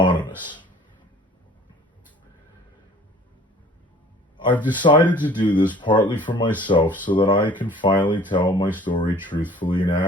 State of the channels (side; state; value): both; normal; correlation 0.50